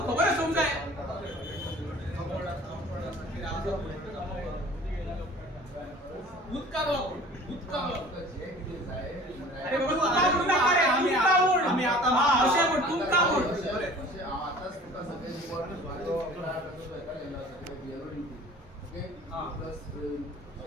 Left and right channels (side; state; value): both; normal; correlation 0.46